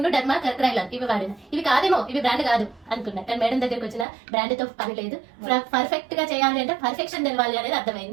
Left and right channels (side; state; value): left; drops out; at 4.0 s